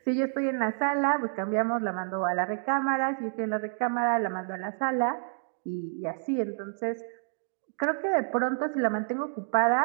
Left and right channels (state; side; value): silent; left; 59 dB below the other